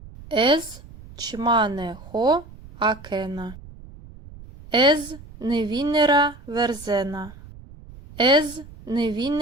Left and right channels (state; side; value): noise; right; rumble, 18 dB below the sound